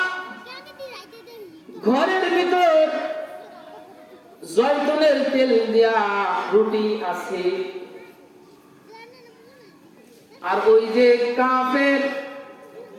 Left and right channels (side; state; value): both; identical; correlation 1.00